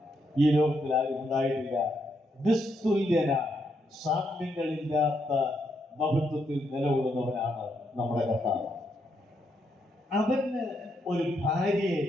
ഈ ലോകത്തിൽ ആരും ഉണ്ടായിട്ടില്ല. നിസ്തുല്യന, സാമ്യങ്ങളില്ലാത്ത മഹത്വത്തിൽ നിലകൊള്ളുന്നവനാണ് നമ്മുടെ കർത്താവ്. അവന് ഒരു ഭാര്യയെ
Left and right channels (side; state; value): both; normal; correlation 0.78